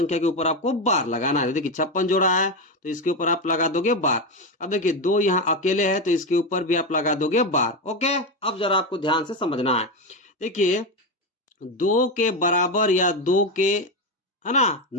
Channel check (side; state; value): both; normal; correlation 0.13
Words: के ऊपर आपको बार लगाना है। देखिए 56 जोड़ा है तो इसके ऊपर आप लगा दोगे बार। अब देखिए 2 यहाँ अकेले है तो इसके ऊपर भी आप लगा दोगे बार। ओके, अब जरा आपको ध्यान से समझना है। देखिए 2 के बराबर या 2 के है ना